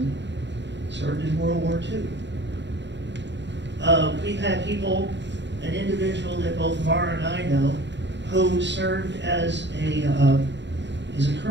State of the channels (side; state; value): left; late; 0.52 ms